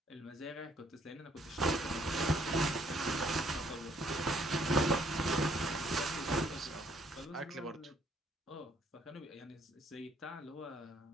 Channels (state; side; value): normal; both; correlation 0.66